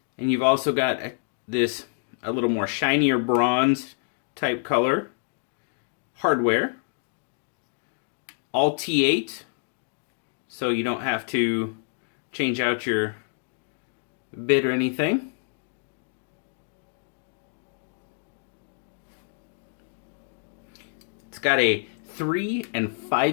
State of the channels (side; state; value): right; silent; 60 dB below the other